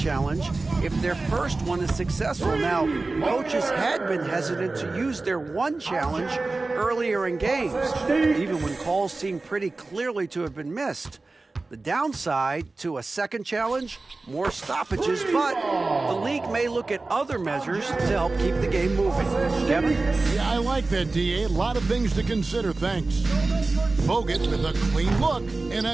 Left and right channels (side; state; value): left; quieter; 3.4 dB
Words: if their first one is successful. Now, coaches had been hesitant to use their one challenge earlier in games, even when calls seemed pretty clearly to have been missed. The downside to a second challenge, more stoppages, but the league may look at other measures to help keep the game moving. Kevin? Yeah, I like that, DA. A lot of things to consider, thanks. Bogut with a clean look, and